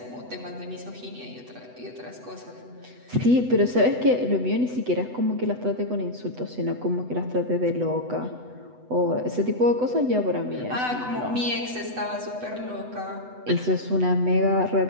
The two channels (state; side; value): late; left; 8.0 ms